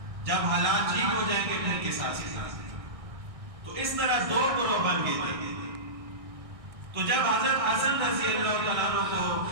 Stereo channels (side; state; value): left; late; 1.6 ms